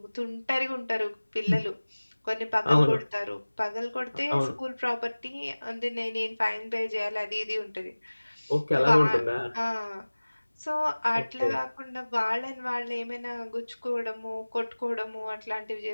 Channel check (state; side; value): inverted; both; correlation -1.00